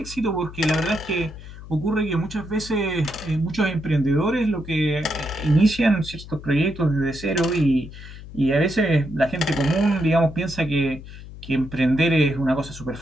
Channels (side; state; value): left; noise; hum, 14 dB below the sound